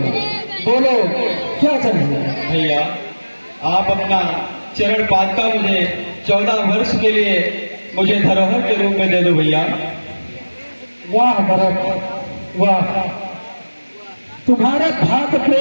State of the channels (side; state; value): both; inverted; correlation -1.00